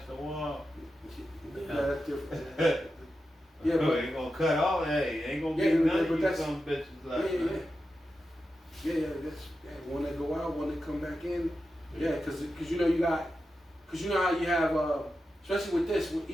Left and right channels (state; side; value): normal; both; correlation 0.90